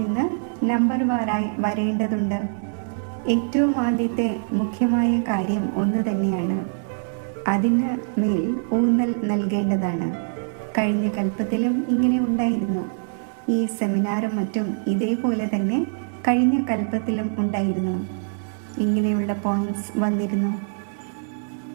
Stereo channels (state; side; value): silent; left; 63 dB below the other